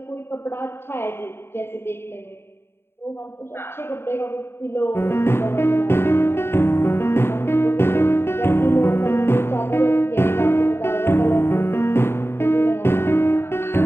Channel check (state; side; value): late; right; 0.11 ms